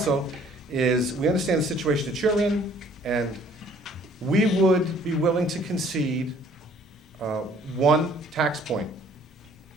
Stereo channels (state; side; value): normal; both; correlation 0.58